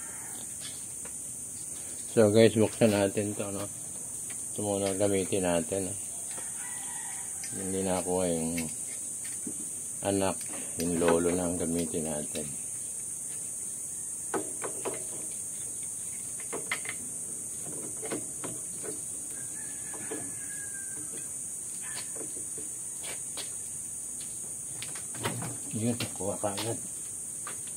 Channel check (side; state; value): both; identical; correlation 1.00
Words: So guys, buksan natin to, no? Ito muna gamitin natin, no? Hindi na ako yung anak, yung lolo na ang gamitin natin. Yun, kuha ka agad.